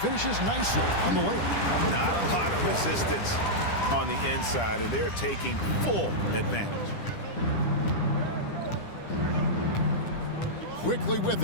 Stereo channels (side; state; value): right; late; 10 ms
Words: nicely on the layup. Not a lot of resistance on the inside, and they're taking full advantage. Quickly with